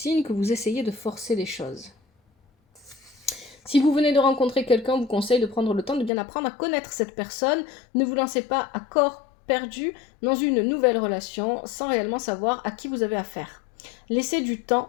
que vous essayez de forcer les choses. Si vous venez de rencontrer quelqu'un, on vous conseille de prendre le temps de bien apprendre à connaître cette personne. Ne vous lancez pas à corps perdu dans une nouvelle relation sans réellement savoir à qui vous avez affaire. Laissez-vous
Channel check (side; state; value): right; drops out; at 6.1 s